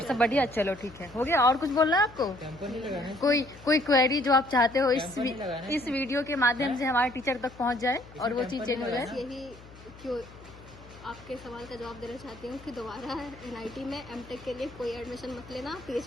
सब बढ़िया। चलो ठीक है, हो गया। और कुछ बोलना है आपको? कोई क्वेरी जो आप चाहते हो इस वीडियो के माध्यम से हमारे टीचर तक पहुंच जाए और वो चीज चेंज हो जाए। यही क्यों आपके सवाल का जवाब देना चाहती हूँ कि दोबारा NIT में M.Tech के लिए कोई एडमिशन मत लेना,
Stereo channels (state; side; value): noise; left; hum, 20 dB below the sound